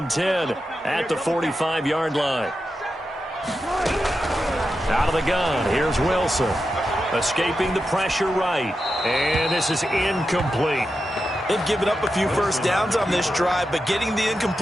10 at the 45-yard line. Out of the gun, here's Wilson. Escaping the pressure right. And this is incomplete. They've given up a few first downs on this drive, but getting the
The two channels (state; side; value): normal; both; correlation 0.89